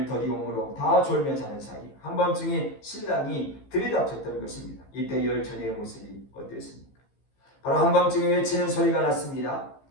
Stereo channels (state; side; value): late; right; 15 ms